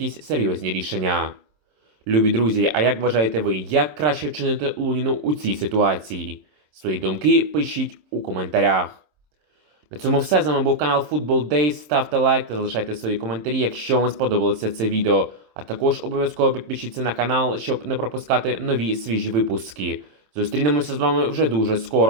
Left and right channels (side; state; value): left; late; 27 ms